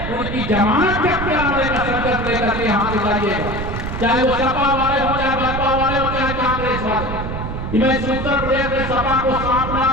उनकी जमानत जब्त कराने का संकल्प लेकर के यहाँ से जाइएगा, चाहे वो सपा वाले हो, चाहे बसपा वाले हो, चाहे कांग्रेस वाले। मैं उत्तर प्रदेश में सपा को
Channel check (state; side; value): noise; right; rumble, 5 dB below the sound